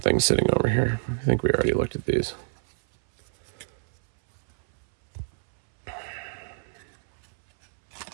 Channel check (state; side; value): silent; left; 60 dB below the other